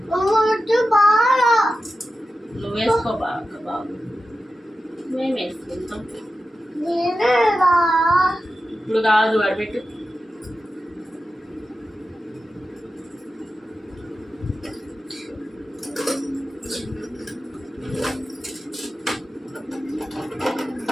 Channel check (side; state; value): both; normal; correlation 0.92